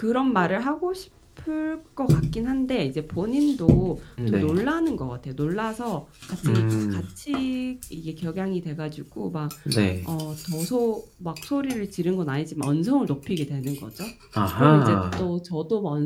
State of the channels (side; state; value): both; identical; correlation 1.00